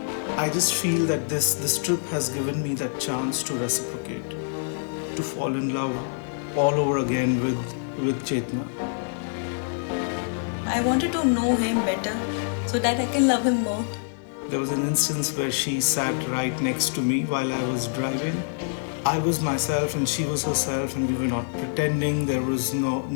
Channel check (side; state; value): right; silent; digital silence